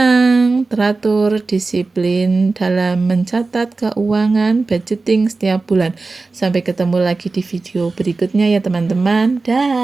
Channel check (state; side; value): quieter; left; 3.7 dB